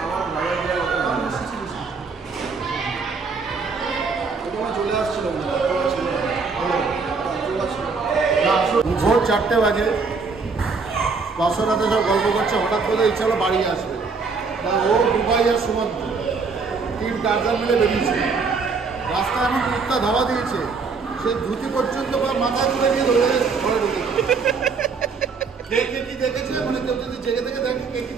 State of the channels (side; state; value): left; quieter; 4.7 dB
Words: চলে আসছিল ভোর 4টে বাজে, বাসরাতে সব গল্প করছে, হঠাৎ করে ইচ্ছা হলো বাড়ি আসবে। ও দুবাই আর সুমন্ত 3 টার্জার মিলে বেরিয়েছে। রাস্তায় এমন কুত্তা ধাওয়া দিয়েছে, সে ধুতি পর্যন্ত মাথায় তুলে দিয়ে ধরে ঘরে ঢুকেছে। কে কি দেখেছে, মানে কেউ যদি জেগে থেকে দেখে কে কি